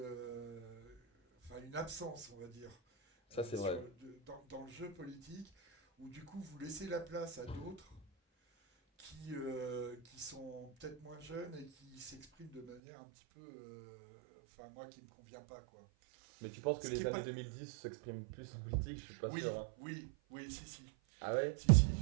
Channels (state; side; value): drops out; left; at 12.8 s